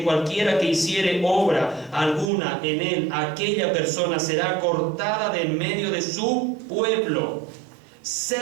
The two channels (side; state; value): left; drops out; at 2.3 s